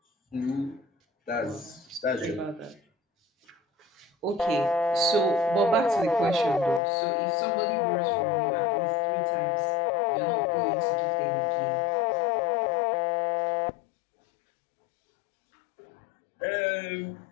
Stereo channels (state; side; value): drops out; right; at 6.8 s